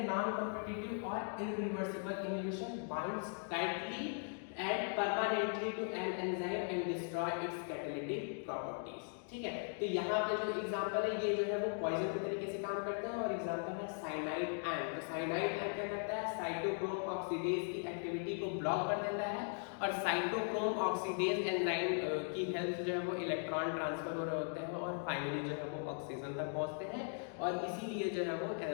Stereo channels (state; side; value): silent; right; 52 dB below the other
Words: non competitive और irreversible inhibition binds tightly and permanently to an enzyme and destroy its catalytic properties। ठीक है, तो यहाँ पे जो एग्जांपल है ये जो है वो पॉइजन के तरीके से काम करते हैं, और एग्जांपल है साइनाइड एंड। तो साइनाइड एंड क्या करता है, साइटोक्रोम ऑक्सीडेज की एक्टिविटी को ब्लॉक कर देता है, और साइटोक्रोम ऑक्सीडेज एंजाइम की हेल्प जो है वो इलेक्ट्रॉन ट्रांसफर हो रहे होते हैं, और फाइनली जो है वो ऑक्सीजन तक पहुंचते हैं, और इसीलिए जो है वो